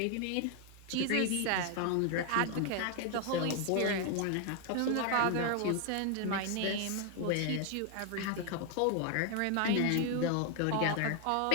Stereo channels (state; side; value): different; both; correlation 0.00